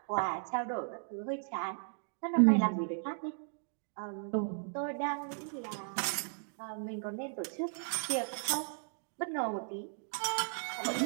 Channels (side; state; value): left; silent; digital silence